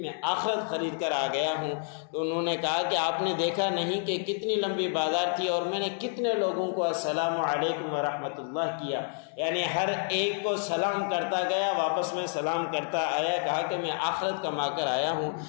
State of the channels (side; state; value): right; silent; 59 dB below the other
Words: آخرت خرید کر آ گیا ہوں۔ تو انہوں نے کہا کہ آپ نے دیکھا نہیں کہ کتنی لمبی بازار تھی اور میں نے کتنے لوگوں کو السلام علیکم ورحمۃ اللہ کیا، یعنی ہر ایک کو سلام کرتا گیا، واپس میں سلام کرتا آیا، کہا کہ میں آخرت کما کر آیا ہوں،